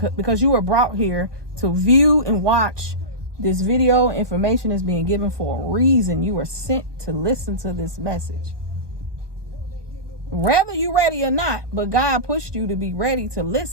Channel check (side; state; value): left; late; 1.2 ms